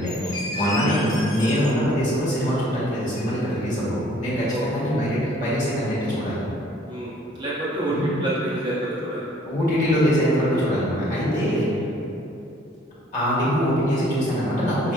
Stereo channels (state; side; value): normal; both; correlation 0.58